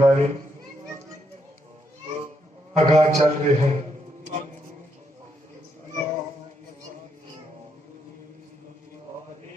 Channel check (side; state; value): both; normal; correlation 0.78